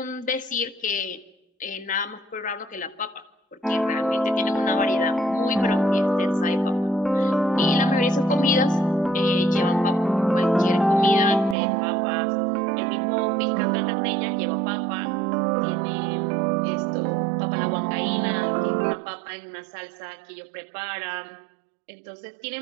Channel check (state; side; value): drops out; left; at 11.6 s